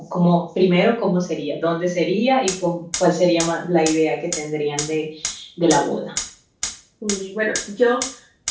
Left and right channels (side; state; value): both; identical; correlation 1.00